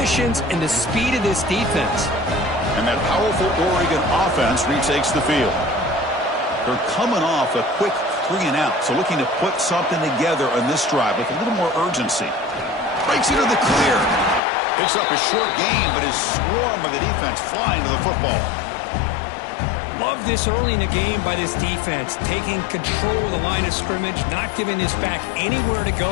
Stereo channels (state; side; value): drops out; right; at 14.4 s